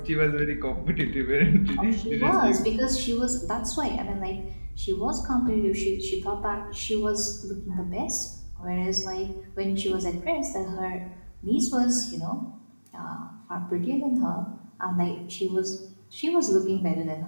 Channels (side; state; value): both; inverted; correlation -1.00